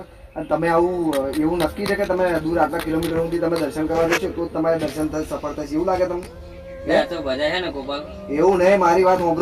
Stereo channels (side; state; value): both; identical; correlation 1.00